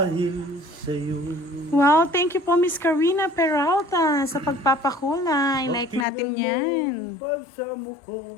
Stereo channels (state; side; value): drops out; right; at 6.1 s